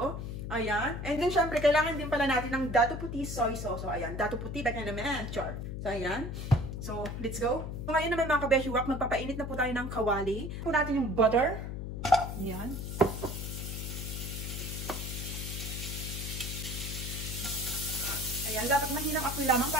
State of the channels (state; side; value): noise; left; hum, 5 dB below the sound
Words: Ayan. And then, syempre, kailangan din pala natin ng dato puti soy sauce. So, ayan, dato puti. Back na naman. Char. So, ayan. So, let's go. So, ngayon naman mga kabeshi wak, magpapainit na po tayo ng kawali. Po natin yung butter. Ayan. Ayan, dapat mahinang apoy lamang